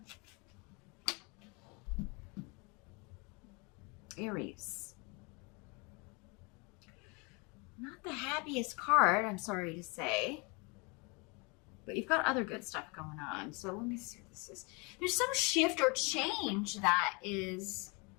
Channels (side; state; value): right; quieter; 30.1 dB